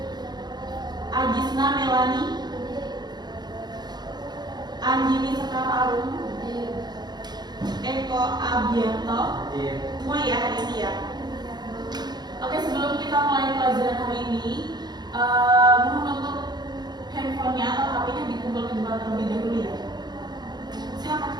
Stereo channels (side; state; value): left; late; 0.20 ms